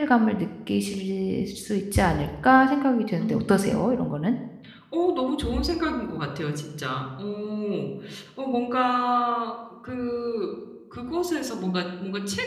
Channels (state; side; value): identical; both; correlation 1.00